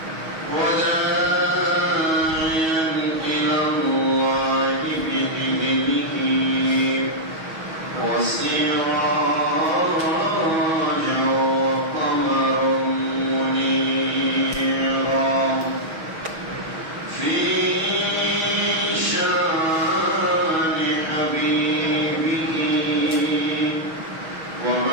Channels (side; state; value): left; late; 6.3 ms